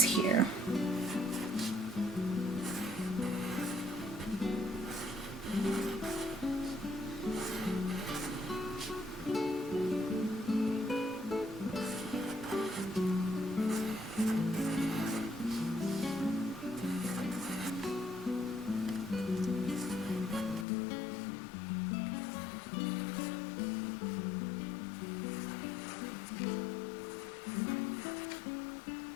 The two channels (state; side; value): drops out; right; at 20.7 s